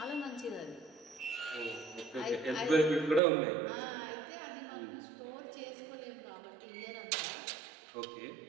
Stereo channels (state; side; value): drops out; left; at 3.2 s